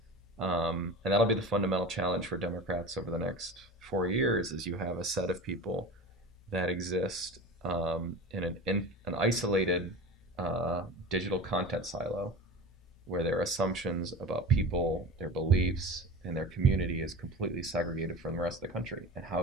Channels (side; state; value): both; normal; correlation 0.33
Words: And that'll be the fundamental challenge for Democrats over the next 4 years, is you have a set of people that exist in an isolated digital content silo, where their assumptions about people, their beliefs, and their community is completely segregated from the rest of the country. And how